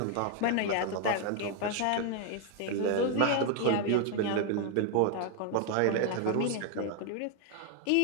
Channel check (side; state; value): both; different; correlation 0.00